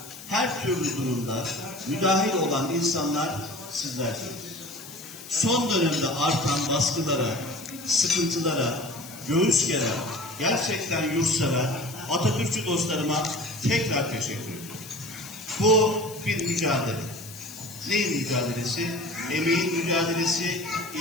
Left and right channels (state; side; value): noise; left; hiss, 15 dB below the sound